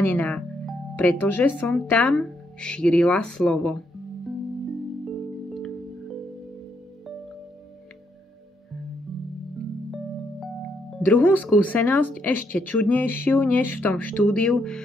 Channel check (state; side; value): normal; both; correlation 0.76